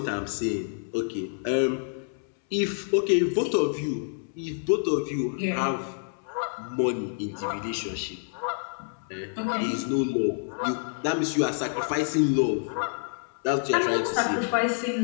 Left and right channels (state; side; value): silent; right; 60 dB below the other